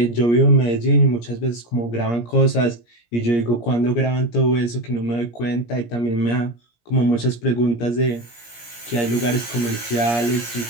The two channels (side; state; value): right; late; 17 ms